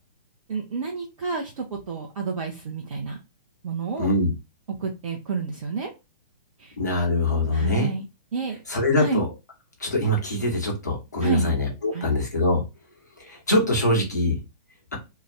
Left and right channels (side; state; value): both; inverted; correlation -0.47